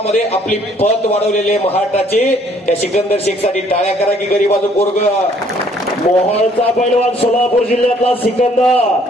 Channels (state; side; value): normal; both; correlation 0.62